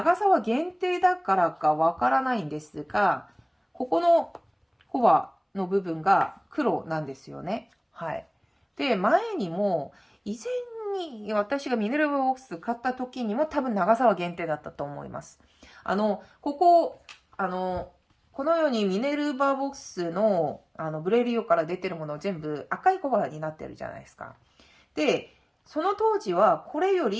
さは限定だからかわからないんですが、ここのコバの部分が黒なんですよね。はい。で、前にも、以前に私がミネルヴァボックス買った時にも多分長さは限定だったと思います。このようにミネルヴァボックスの、ブレリオから出てるもの全部赤いコバになってるじゃないですか。で、その当時はこれよ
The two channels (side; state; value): both; identical; correlation 1.00